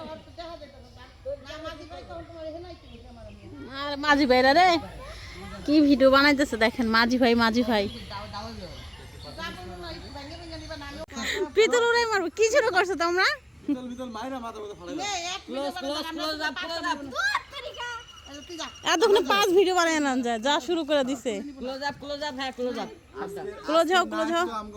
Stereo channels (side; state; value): both; identical; correlation 1.00